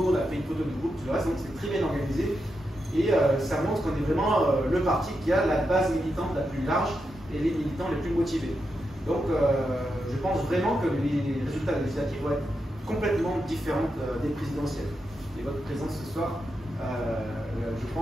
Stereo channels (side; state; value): both; normal; correlation 0.86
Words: a fait une photo de groupe, tout le reste. Donc, c'est très bien organisé. Et ça montre qu'on est vraiment le parti qui a la base militante la plus large et les militants les plus motivés. Donc, je pense vraiment que les résultats législatifs vont être complètement différents des présidentielles. Et votre présence ce soir, je